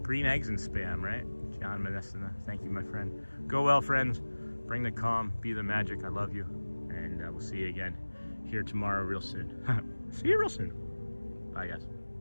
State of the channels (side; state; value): both; inverted; correlation -1.00